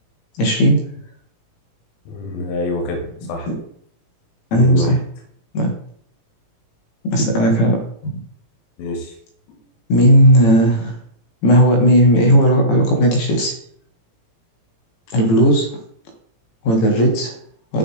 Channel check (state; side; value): late; right; 18 ms